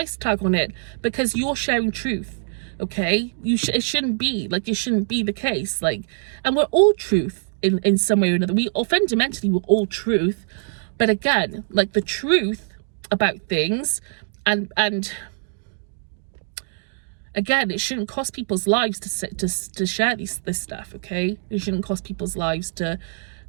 tag on it because you're sharing truth. Okay, it shouldn't be like, it shouldn't be the case. Like, and we're all truth in some way or another. Fundamentally we're all truth, but again, like, the truth about things, and again, it shouldn't cost people's lives to share this stuff. Okay, it shouldn't cost people's lives to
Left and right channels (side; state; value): left; silent; digital silence